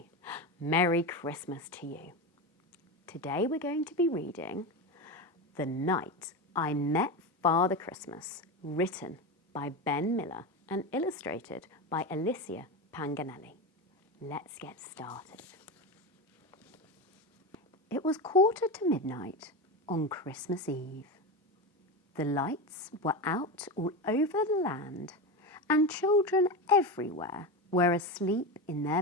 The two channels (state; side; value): normal; both; correlation 0.19